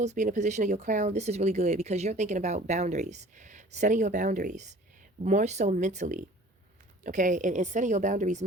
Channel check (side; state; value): both; normal; correlation 0.48